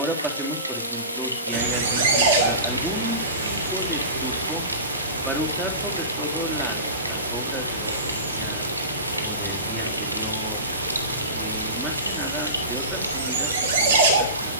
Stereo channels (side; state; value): both; inverted; correlation -0.32